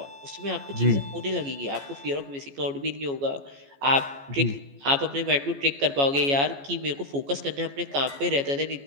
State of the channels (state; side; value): late; left; 14 ms